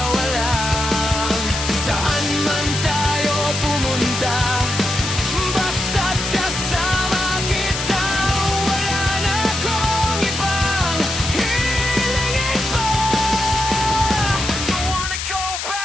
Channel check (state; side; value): noise; left; hiss, 4 dB below the sound